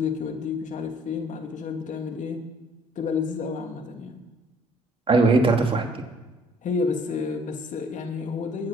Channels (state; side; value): normal; both; correlation 0.60